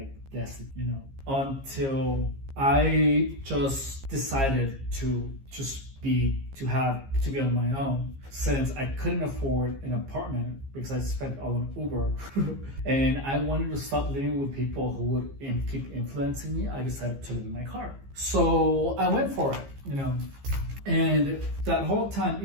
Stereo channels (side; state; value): left; late; 15 ms